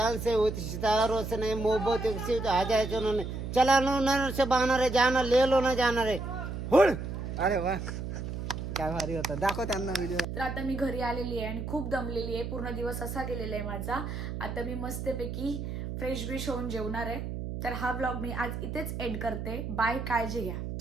से होती. सितारों से नहीं मोहब्बत से आ जाए जो उन्होंने. चला लो ना से बहाना रे, जाना ले लो ना जाना रे. हुड. अरे वा काय भारी होता. दाखव त्यांना व्हिडिओ. तर आता मी घरी आलेली आहे आणि खूप दमलेली आहे. पूर्ण दिवस असा गेलेला आहे माझा. आता मी मस्तपैकी फ्रेश होऊन जेवणार आहे. तर हा व्लॉग मी आज इथेच एंड करते. बाय. काळजी घ्या.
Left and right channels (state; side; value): noise; right; hum, 5 dB below the sound